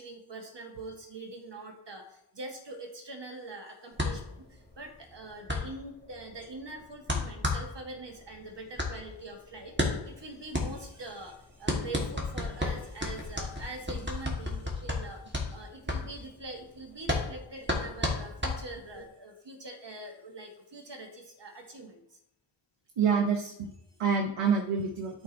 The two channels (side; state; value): both; normal; correlation 0.37